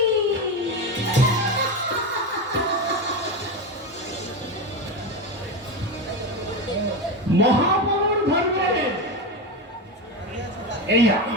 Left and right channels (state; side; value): normal; both; correlation 0.17